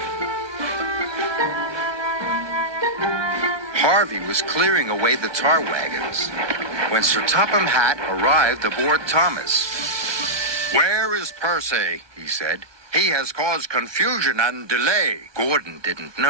Harvey was clearing away the tar wagons when Sir Topham Hatt arrived aboard Thomas. Where is Percy? He said. He has caused confusion and delay. Gordon didn't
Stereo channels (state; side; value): late; left; 1.2 ms